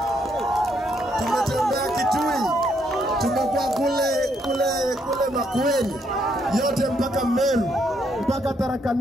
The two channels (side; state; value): both; normal; correlation 0.74